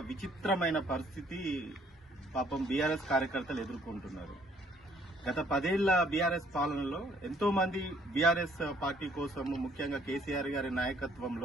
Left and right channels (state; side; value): normal; both; correlation 0.62